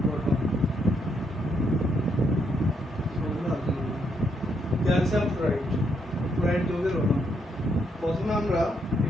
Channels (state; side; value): normal; both; correlation 0.76